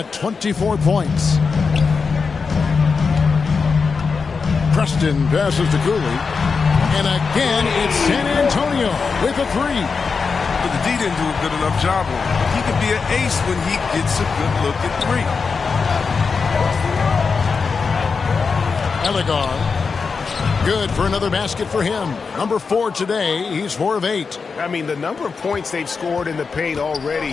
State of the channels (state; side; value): quieter; right; 5.1 dB